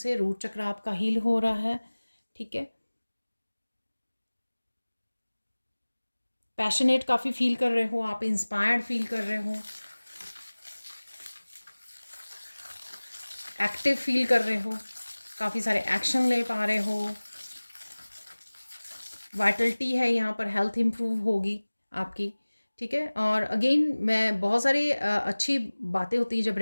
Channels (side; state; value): both; inverted; correlation -1.00